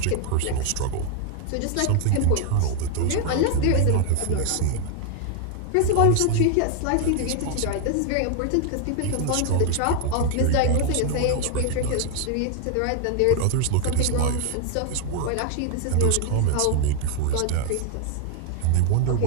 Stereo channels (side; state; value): both; different; correlation 0.00